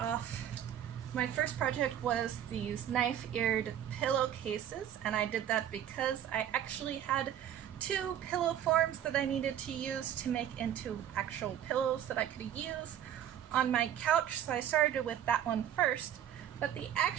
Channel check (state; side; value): quieter; left; 10.5 dB